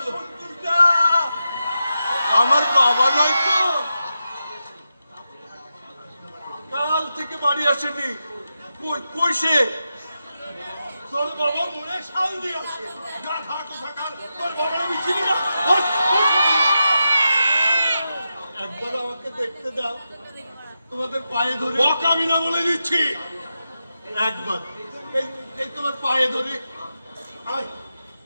সন্তোষদা, আমার বাবা নয় তো? কাল থেকে বাড়ি আসেনি। কই সে? তোর বাবা মনে শাল দিয়ে আছে। গাধা কোথাকার, তোর বাবার আমি চিনি না। একবার আমাকে দেখতে দাও, তোমাদের পায়ে ধরে। বকামি না বলে দিচ্ছি, একবার এই তোমার পায়ে ধরে। আয়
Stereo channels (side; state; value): both; inverted; correlation -0.89